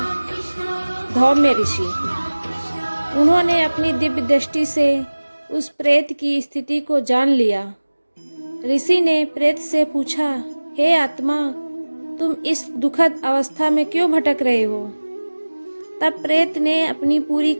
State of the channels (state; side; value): inverted; both; correlation -1.00